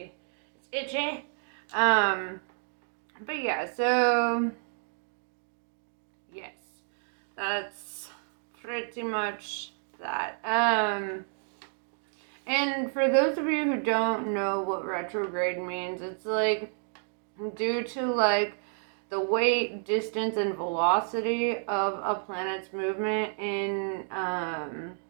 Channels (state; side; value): silent; left; 58 dB below the other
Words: It's itchy. But yeah, so yes, that's pretty much that. And for those of you who don't know what retrograde means, it's like due to like the weight, distance, and velocity of a planet's movement in